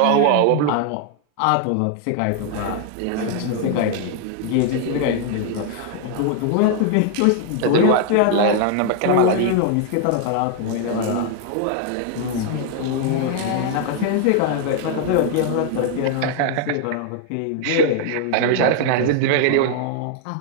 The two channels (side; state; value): both; different; correlation 0.00